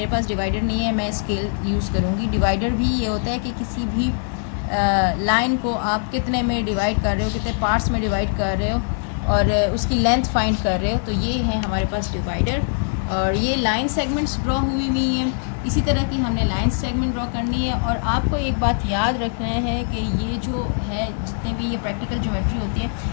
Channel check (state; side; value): silent; right; 61 dB below the other